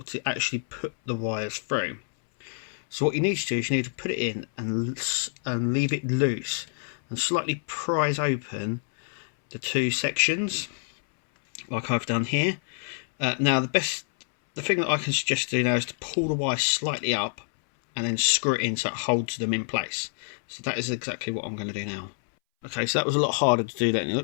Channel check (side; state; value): right; silent; 60 dB below the other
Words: to actually put the wires through. So what you need to do is you need to put it in and leave it loose and slightly prise open the two sections, like I've done here. Now the thing that I can suggest to do now is to pull the wire slightly up and then screw it in so it holds them in place. So that is exactly what I'm going to do now. Okay, so that was a lot harder to do than it